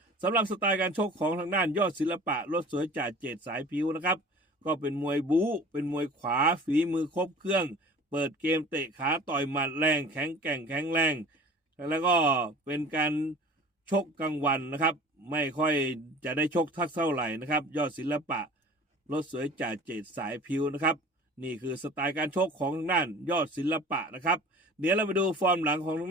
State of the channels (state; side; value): normal; both; correlation 0.44